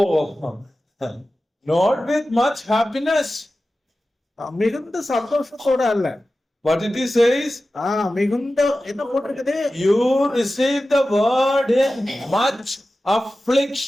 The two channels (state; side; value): normal; both; correlation 0.94